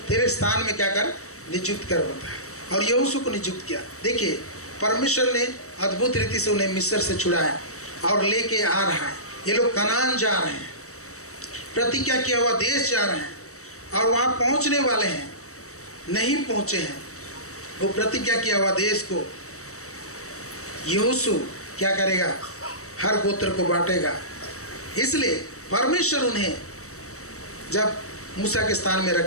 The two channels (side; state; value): right; late; 0.65 ms